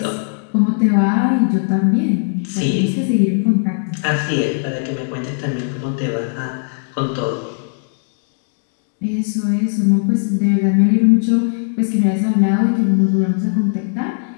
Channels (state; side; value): silent; right; digital silence